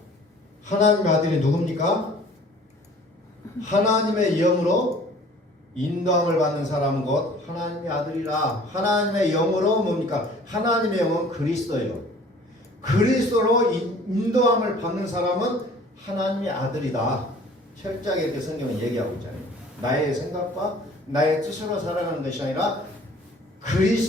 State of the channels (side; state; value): both; normal; correlation 0.50